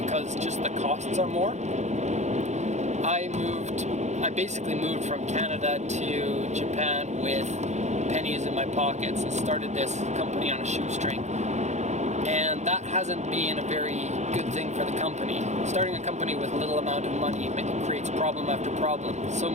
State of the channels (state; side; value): late; left; 0.33 ms